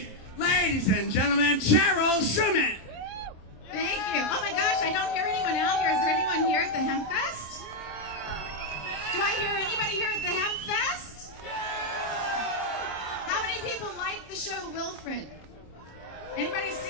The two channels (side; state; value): right; late; 26 ms